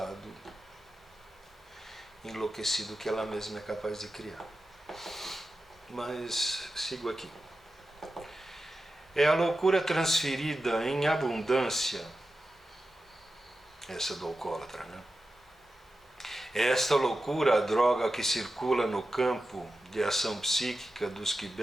enlouquecido que ela mesma é capaz de criar. Mas sigo aqui. É a loucura transferida em abundância, essa do alcoólatra, né? É esta loucura a droga que circula no campo de ação psíquica dos que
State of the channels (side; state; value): both; normal; correlation 0.92